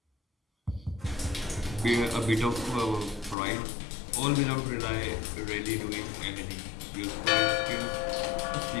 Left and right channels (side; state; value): right; drops out; at 3.4 s